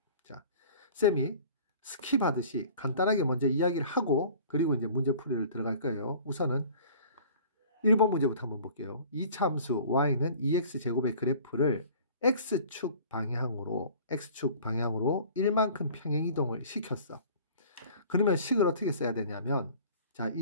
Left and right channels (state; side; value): inverted; both; correlation -0.47